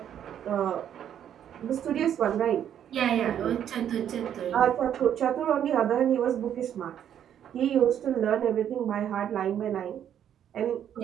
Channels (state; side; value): quieter; left; 9.7 dB